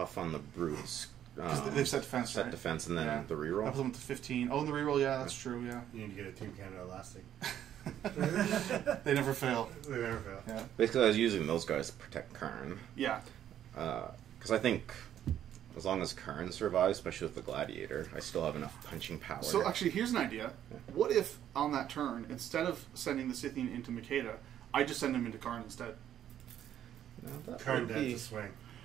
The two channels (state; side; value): quieter; left; 10.7 dB